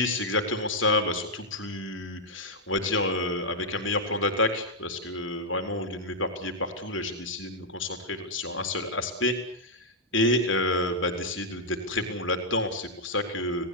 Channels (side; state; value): both; normal; correlation -0.05